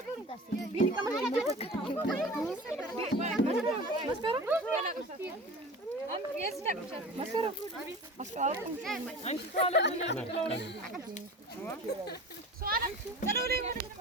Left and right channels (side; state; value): both; normal; correlation 0.37